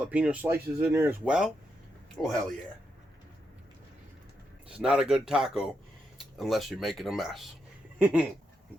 slices in there as well. Oh, hell yeah. It's not a good taco unless you're making a mess.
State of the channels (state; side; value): normal; both; correlation 0.83